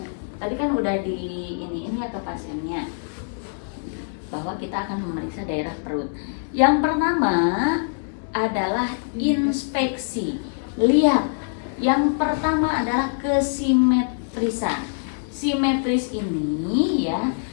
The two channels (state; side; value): silent; right; digital silence